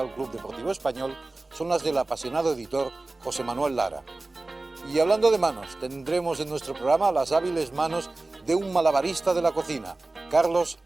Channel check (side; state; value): left; quieter; 3.1 dB